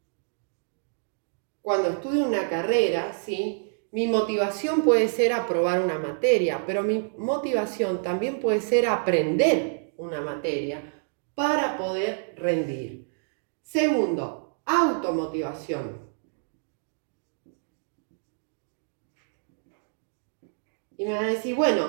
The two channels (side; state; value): left; silent; digital silence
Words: Cuando estudio una carrera, ¿sí?, mi motivación puede ser aprobar una materia, pero mi motivación también puede ser aprender una materia para poder rendir. Segundo, automotivación. Y me van a decir,